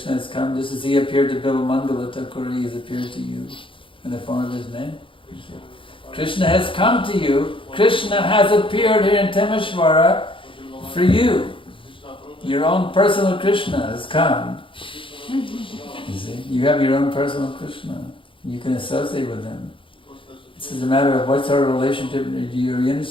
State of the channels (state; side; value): late; right; 0.25 ms